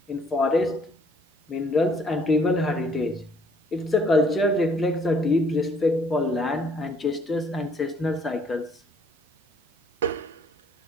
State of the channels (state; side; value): normal; both; correlation 0.63